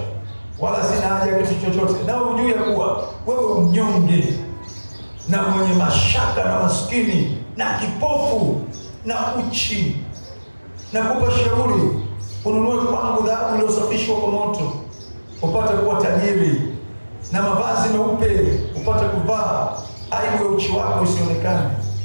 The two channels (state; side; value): inverted; both; correlation -1.00